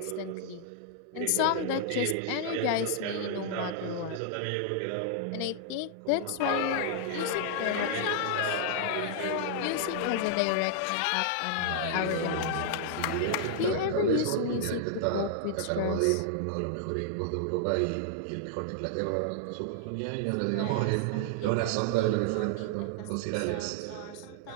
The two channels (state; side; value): different; both; correlation -0.01